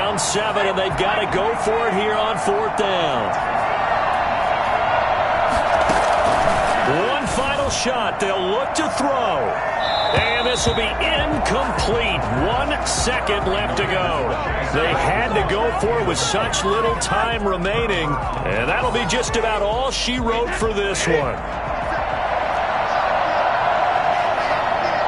7, and they've got to go for it here on 4th down. One final shot. They'll look to throw. And this will be incomplete. 1 second left to go. They had to go for it with such little time remaining. And that'll be just about all she wrote for this one.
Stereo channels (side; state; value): both; identical; correlation 1.00